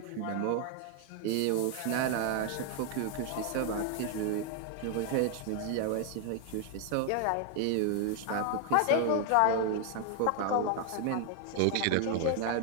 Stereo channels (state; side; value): different; both; correlation 0.00